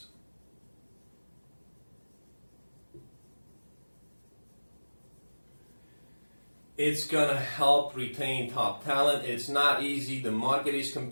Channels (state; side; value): inverted; both; correlation -1.00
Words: It's gonna help retain top talent. It's not easy. The market is